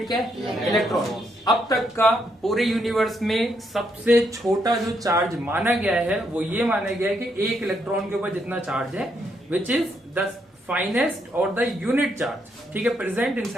क्या है, इलेक्ट्रॉन। अब तक का पूरे यूनिवर्स में सबसे छोटा जो चार्ज माना गया है वो ये माना गया है कि एक इलेक्ट्रॉन के ऊपर जितना चार्ज है, विच इज द फाइनेस्ट और द यूनिट चार्ज, ठीक है, प्रेजेंट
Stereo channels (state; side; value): normal; both; correlation 0.76